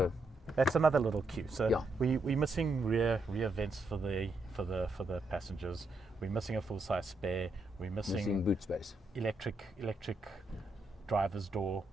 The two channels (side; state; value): both; normal; correlation 0.81